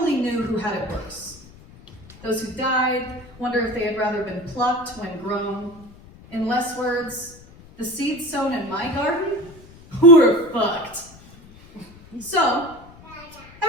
knew who had it worse. Those who died wonder if they had rather been plucked when grown. In less words, the seeds sown in my garden were fucked. So,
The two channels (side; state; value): left; noise; rumble, 22 dB below the sound